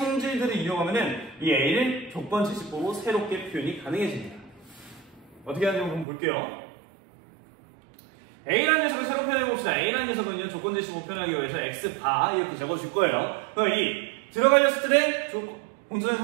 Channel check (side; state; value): left; drops out; at 6.1 s